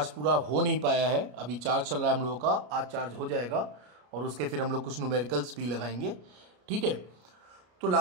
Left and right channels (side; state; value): left; late; 33 ms